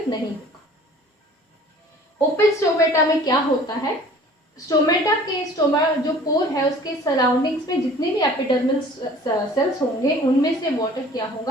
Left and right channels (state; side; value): normal; both; correlation 0.48